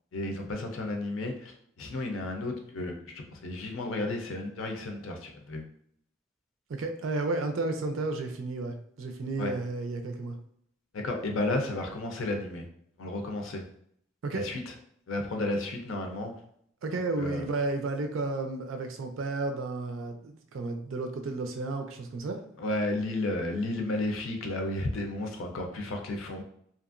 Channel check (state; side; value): normal; both; correlation 0.41